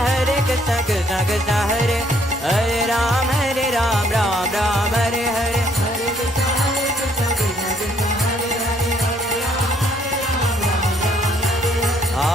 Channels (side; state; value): both; normal; correlation 0.66